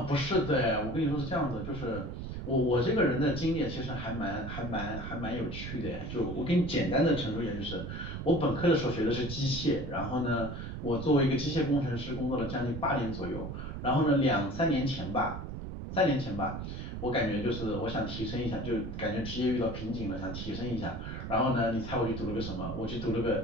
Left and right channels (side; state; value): right; noise; rumble, 7 dB below the sound